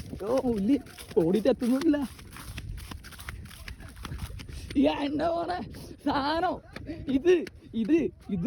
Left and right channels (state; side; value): identical; both; correlation 1.00